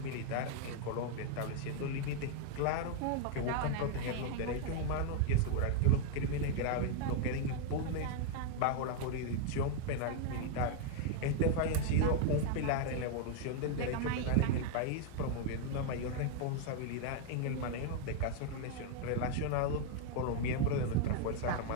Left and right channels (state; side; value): different; both; correlation 0.00